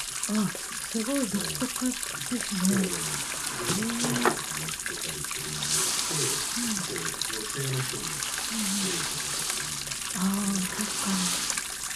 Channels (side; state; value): both; identical; correlation 1.00